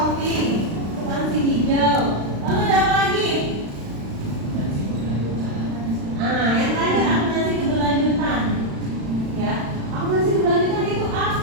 akuntansi hijau. Lalu ada apa lagi? Yang terakhir akuntansi keberlanjutan. Ya, akuntansi keberlanjutan itu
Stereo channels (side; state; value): left; late; 36 ms